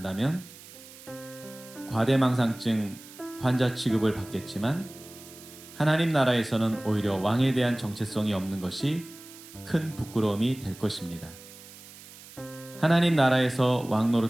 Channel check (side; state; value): right; noise; hiss, 18 dB below the sound